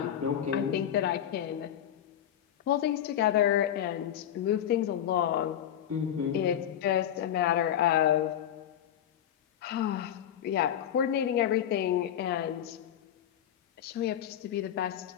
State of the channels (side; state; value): right; quieter; 10.4 dB